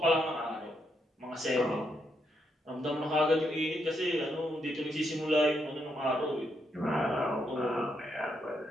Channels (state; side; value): normal; both; correlation 0.79